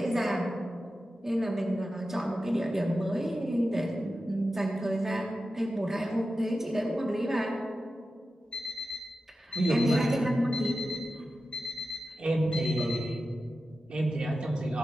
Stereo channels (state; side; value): normal; both; correlation 0.92